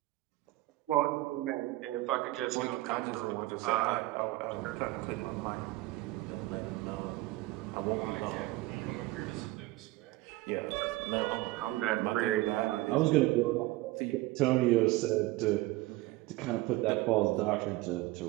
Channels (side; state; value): left; quieter; 19.1 dB